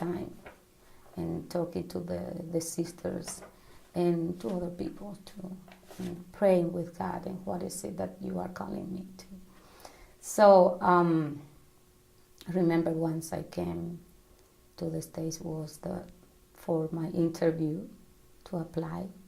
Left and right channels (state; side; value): identical; both; correlation 1.00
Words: and talking to the sisters and to other people too, and praying with God, and what is it that you are calling me to? So I remember once I came to the States was for my interview to apply,